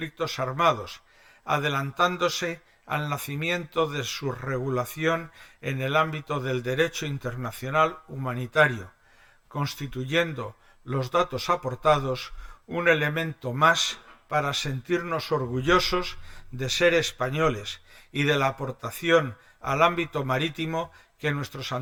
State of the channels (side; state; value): both; identical; correlation 1.00